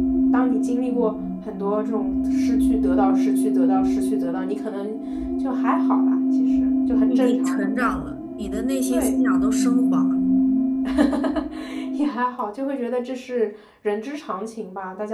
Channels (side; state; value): both; identical; correlation 1.00